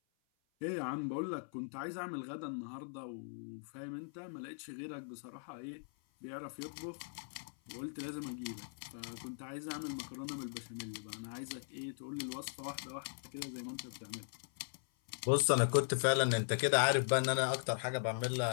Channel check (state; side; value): silent; right; 52 dB below the other